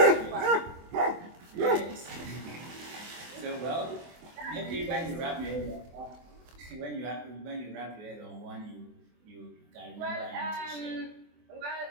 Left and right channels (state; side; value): late; left; 24 ms